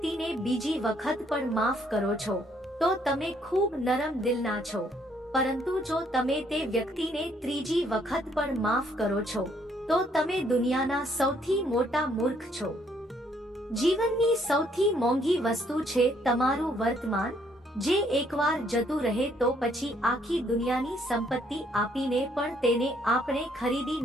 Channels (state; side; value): normal; both; correlation 0.68